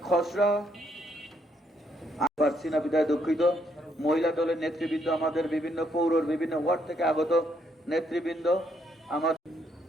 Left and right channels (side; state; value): both; normal; correlation 0.73